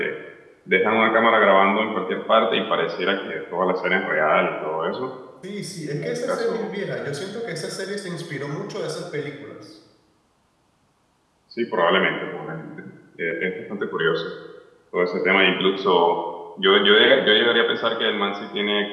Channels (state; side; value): identical; both; correlation 1.00